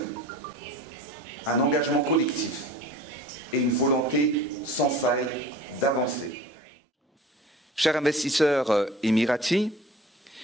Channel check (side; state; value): both; normal; correlation 0.42